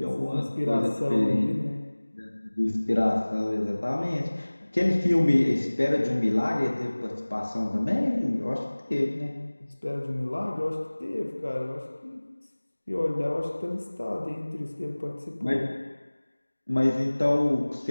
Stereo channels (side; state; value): both; inverted; correlation -1.00